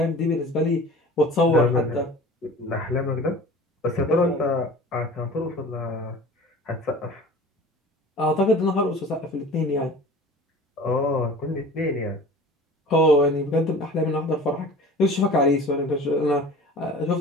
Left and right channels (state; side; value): normal; both; correlation 0.41